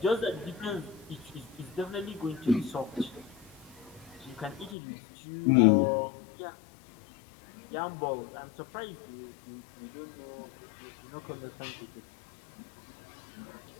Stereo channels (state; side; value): drops out; right; at 4.8 s